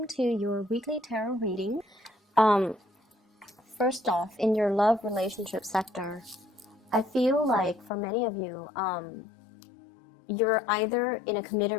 to your weekly tarot reading. Um, First off, in your love relationship sector, I feel like for many of you, you're either in a committed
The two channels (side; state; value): right; drops out; at 7.9 s